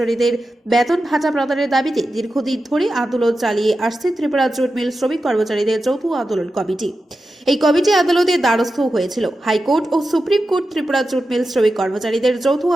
বেতন ভাতা প্রদানের দাবিতে দীর্ঘদিন ধরে আন্দোলন চালিয়ে আসছে ত্রিপুরা জুট মিল শ্রমিক কর্মচারীদের যৌথ আন্দোলন কমিটি। এই কমিটি আদালতের দ্বারস্থ হয়েছিল। হাইকোর্ট ও supreme court Tripura jute mill শ্রমিক কর্মচারীদের যৌথ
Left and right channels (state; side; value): normal; both; correlation 0.91